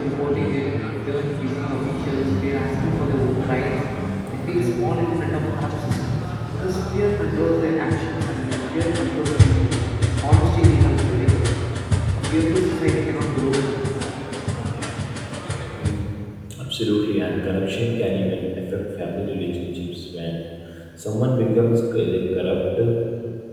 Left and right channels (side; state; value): both; identical; correlation 1.00